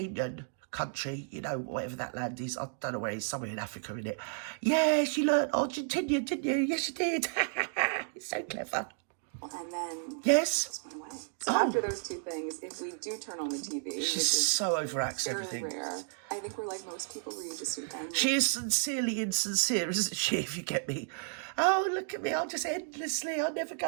country, you know, whatever that land is, I don't know where it is, somewhere in Africa, in it. Yes, you learnt Argentinian, didn't you? Yes, you did. It's so clever. And then yes, just went away. So after those two things, if we do turn on the TV, she's so overacts everything. Rare. I think we're like most people where you just she is sincerely insincere, isn't she? If you get me. Oh, look at me! I'm just endlessly. I never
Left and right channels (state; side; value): silent; left; digital silence